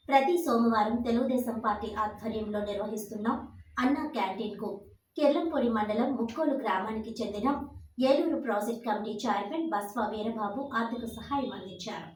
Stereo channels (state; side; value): identical; both; correlation 1.00